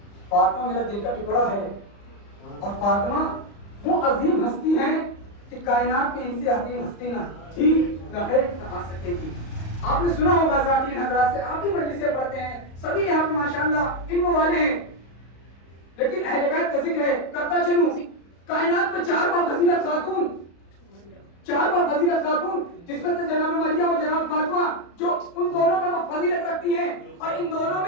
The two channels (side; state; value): right; late; 35 ms